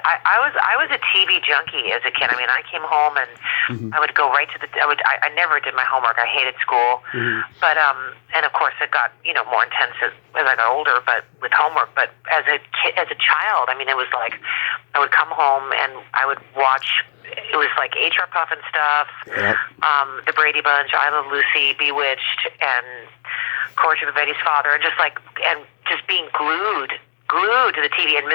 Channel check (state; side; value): silent; right; digital silence